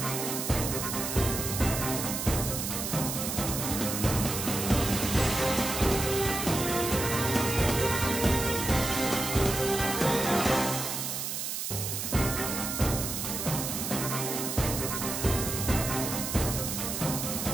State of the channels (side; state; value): right; noise; hiss, 3 dB below the sound